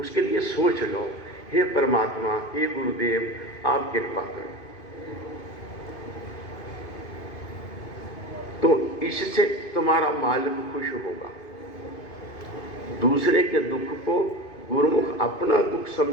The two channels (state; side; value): late; right; 2.5 ms